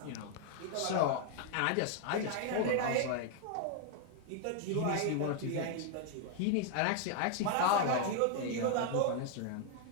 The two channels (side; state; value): both; different; correlation 0.00